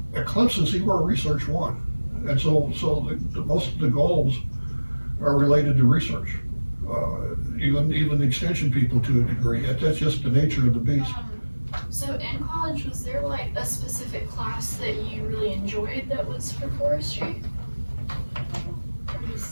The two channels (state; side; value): inverted; both; correlation -1.00